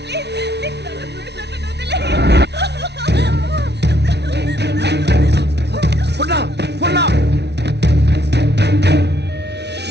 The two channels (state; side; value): late; left; 0.50 ms